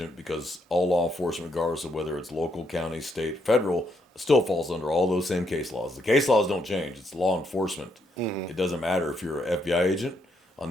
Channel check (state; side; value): normal; both; correlation 0.75